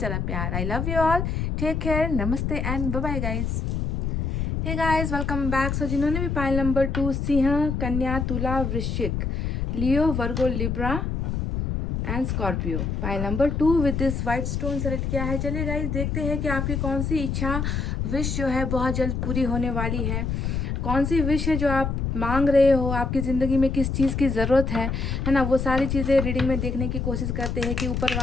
प्यार। I love you all, take care, नमस्ते and bye bye guys. Hey guys, welcome back. So जिन्होंने भी पाइल नंबर 2 सिंह, कन्या, तुला, वृश्चिक, Leo, Virgo, Libra and Scorpio, pile number 2 with this white stone select किया है। चलिए गाइस देखते हैं कि आपकी कौन सी इच्छा, विश जो है बहुत जल्द पूरी होने वाली है। कौन सी विश है जो आप मांग रहे हो, आपकी ज़िंदगी में किस चीज़ की ज़रूरत है ना, वो सारी चीज़ें रीडिंग में देखने की कोशिश करते हैं कि ऊपर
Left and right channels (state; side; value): noise; left; rumble, 1 dB below the sound